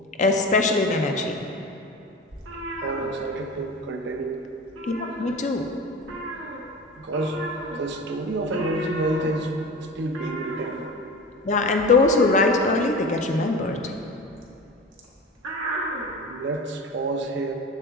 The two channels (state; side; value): normal; both; correlation 0.32